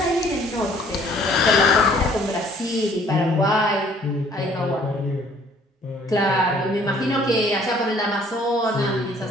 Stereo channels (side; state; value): both; normal; correlation 0.58